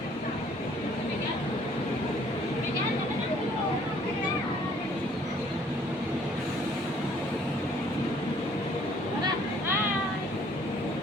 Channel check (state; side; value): normal; both; correlation 0.60